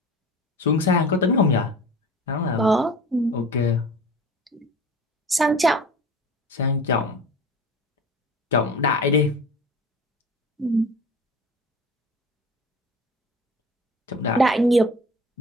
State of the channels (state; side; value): normal; both; correlation 0.38